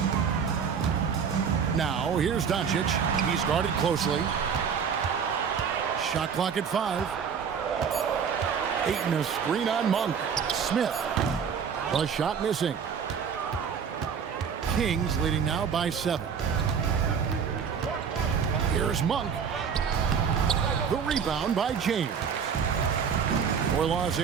Now, here's Doncic. He's guarded closely. Shot clock at 5. Ayton a screen on Monk. Smith. The shot missing. Kings leading now by 7. Here's Monk. The rebound by James. For Los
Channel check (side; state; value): left; quieter; 6.8 dB